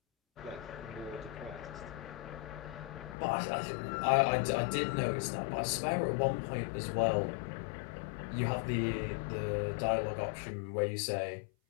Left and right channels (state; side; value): drops out; right; at 3.2 s